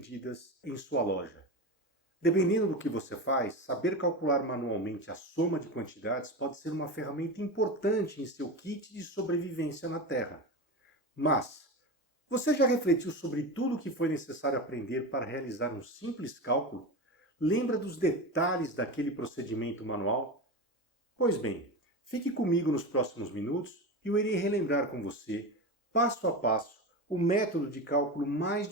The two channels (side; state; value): both; normal; correlation 0.23